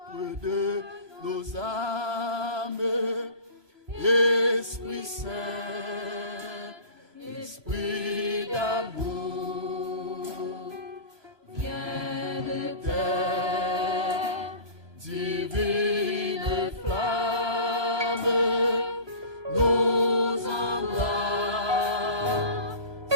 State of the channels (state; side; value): late; left; 1.2 ms